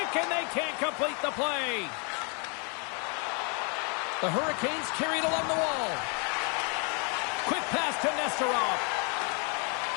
and they can't complete the play. The Hurricanes carry it along the wall. Quick pass to Nesterov.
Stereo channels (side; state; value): right; quieter; 36.8 dB